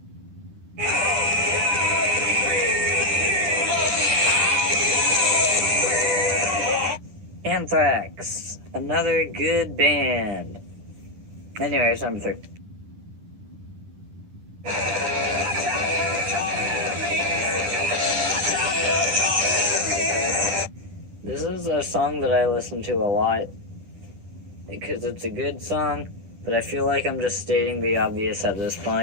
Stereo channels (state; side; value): late; left; 10 ms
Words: Anthrax, another good band. Anyways, number 3. This is a song that I listen to a lot because it's a good song. But I feel like I'm just stating the obvious at this